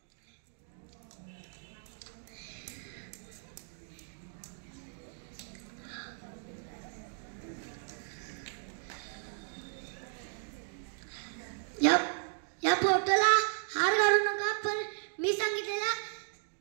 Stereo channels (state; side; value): silent; left; digital silence